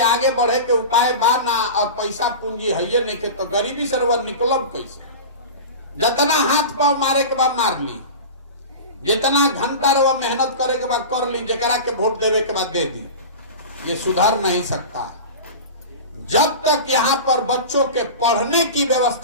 आगे बढ़े के उपाय बाना, और पैसा पूंजी है नहीं के, तो गरीबी से रवा निकलब कैसे? जितना हाथ पांव मारे के बाद मार ली, जितना घंटा रवा मेहनत करे के बाद कर ली, जरा के वोट देवे के बाद दे दी। ये सुधर नहीं सकता जब तक यहाँ पर बच्चों के पढ़ने की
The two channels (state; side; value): inverted; both; correlation -0.30